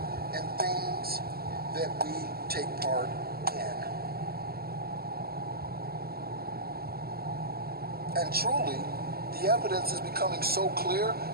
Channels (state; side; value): late; left; 0.45 ms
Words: and things that we take part in. And truly, the evidence is becoming so clear.